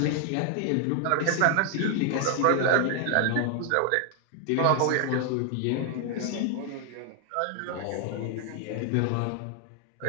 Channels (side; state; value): both; different; correlation 0.00